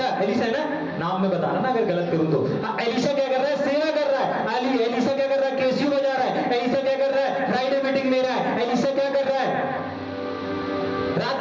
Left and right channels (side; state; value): both; identical; correlation 1.00